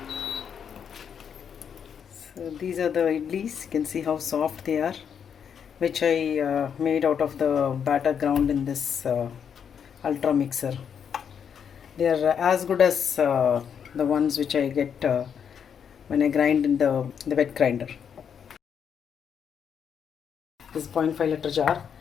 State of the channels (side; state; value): right; quieter; 7.6 dB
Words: So these are the idlis. You can see how soft they are, which I made out of the batter ground in this ultra mixer. They are as good as the ones which I get when I grind in the wet grinder. This is 0.5 liter jar.